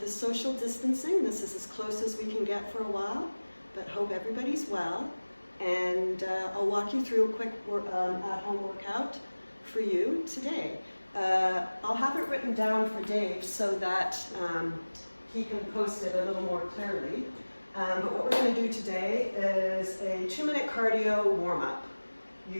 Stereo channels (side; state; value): both; inverted; correlation -1.00